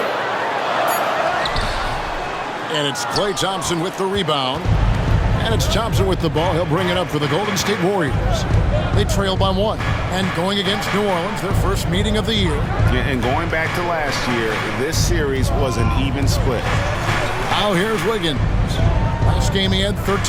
And it's Klay Thompson with the rebound. And it's Thompson with the ball. He'll bring it up for the Golden State Warriors. They trail by one. And going against New Orleans, their first meeting of the year. And going back to last year, this series was an even split. Now here's Wiggins. Last game he had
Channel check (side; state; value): both; identical; correlation 1.00